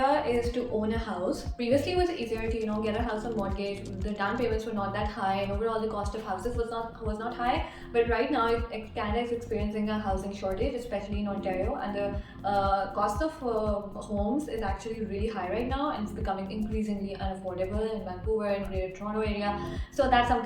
is to own a house. Previously, it was easier to get a house on mortgage. The down payments were not that high, and overall the cost of houses was not high. But right now, Canada is experiencing a housing shortage, especially in Ontario, and the cost of homes is actually really high right now, and it's becoming increasingly unaffordable in Vancouver and Greater Toronto area. So that's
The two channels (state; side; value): identical; both; correlation 1.00